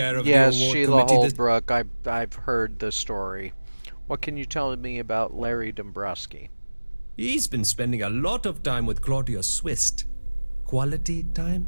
of yes, the award Sheila committee. Holbrook. I've heard the story. What can you tell me about Larry Dombrowski? He's been spending a lot of time with Claudia Swist. Quality time,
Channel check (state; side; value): inverted; both; correlation -1.00